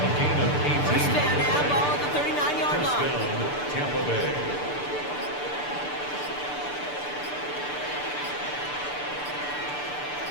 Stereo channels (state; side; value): late; right; 6.8 ms